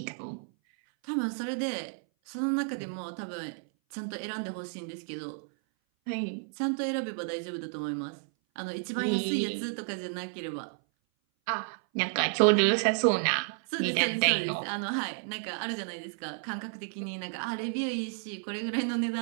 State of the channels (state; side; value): silent; left; 57 dB below the other